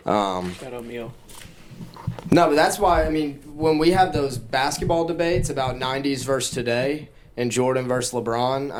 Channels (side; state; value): both; identical; correlation 1.00